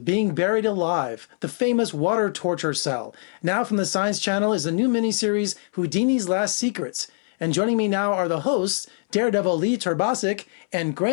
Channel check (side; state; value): right; silent; 63 dB below the other